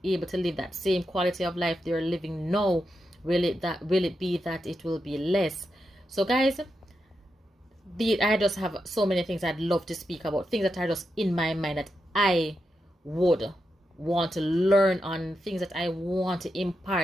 able to live that same quality of life they're living now? Will it be that it will be less? So guys, I just have so many things I'd love to speak about, things that are just in my mind that I would want to learn on, things that I want to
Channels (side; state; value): both; normal; correlation 0.87